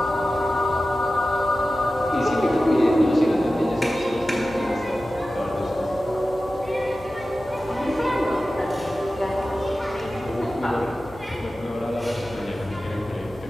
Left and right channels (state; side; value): noise; left; hum, 21 dB below the sound